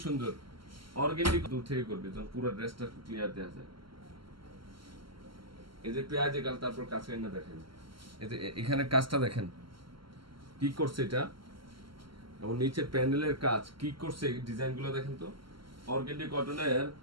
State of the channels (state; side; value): late; left; 0.74 ms